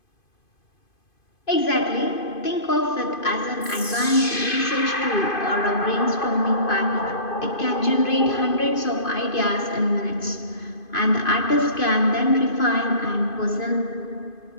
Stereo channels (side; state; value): right; late; 2.5 ms